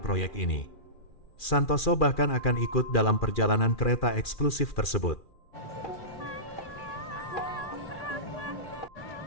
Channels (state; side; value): late; right; 2.4 ms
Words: proyek ini. Santoso bahkan akan ikut dalam perjalanan kereta eksklusif tersebut.